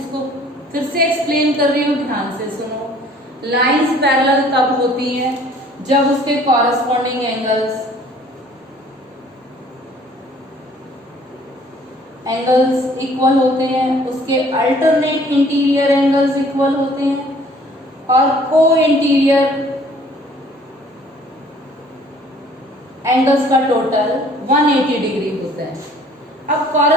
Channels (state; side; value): normal; both; correlation 0.55